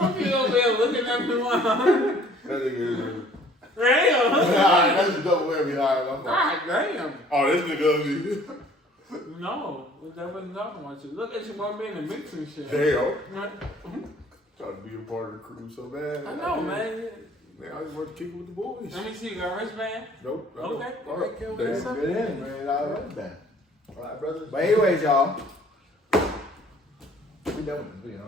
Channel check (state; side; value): normal; both; correlation 0.55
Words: you over there looking at me like, That nigga is. damn. Alright, that's a double whammy. Alright, God damn. oh, this nigga ugly. No, that wasn't talking about you. Look at you one being in the mix and shit. Damn. Right? Trying to be a part of the crew so bad. I know, man. Man, I just want to kick it with the boys. Let me see, you got a wristband? Nope. I Okay. don't. All right. Okay. That's Damn. good in, man. I love that. All right, brother. But anyways, y'all. We done with this video,